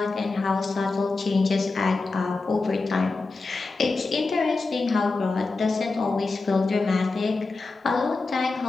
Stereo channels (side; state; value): right; quieter; 3.7 dB